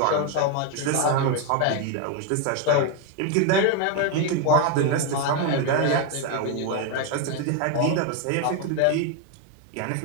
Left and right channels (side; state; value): both; different; correlation 0.01